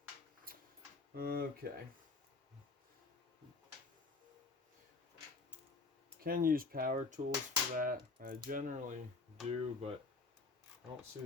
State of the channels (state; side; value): quieter; right; 4.0 dB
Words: okay. Can use power tools for that. I generally do, but I don't see